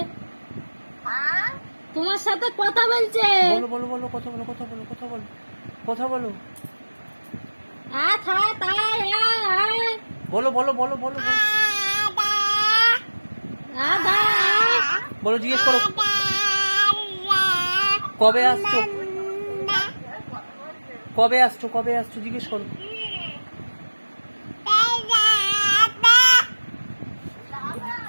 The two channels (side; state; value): both; inverted; correlation -1.00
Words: তোমার সাথে কথা বলছে। बोलो बोलो बोलो, কথা বলো, কথা বলো, কথা বলো, কথা বলো, बोलो बोलो बोलो बोलो बोलो, জিজ্ঞেস করো কবে আসছো, কবে আসছো, কবে আসছো, জিজ্ঞেস করো।